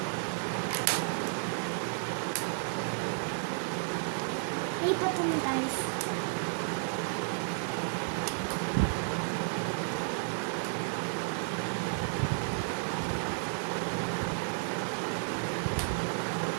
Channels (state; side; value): silent; left; digital silence